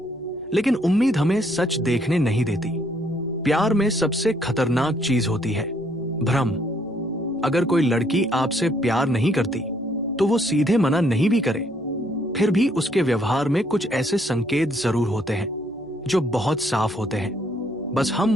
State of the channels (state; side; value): noise; right; hum, 28 dB below the sound